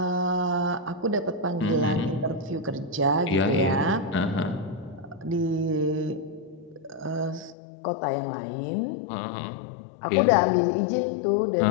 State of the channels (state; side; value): drops out; right; at 7.6 s